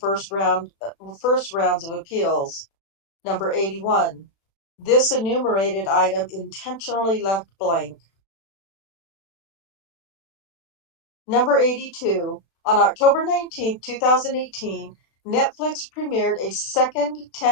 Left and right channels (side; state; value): right; late; 36 ms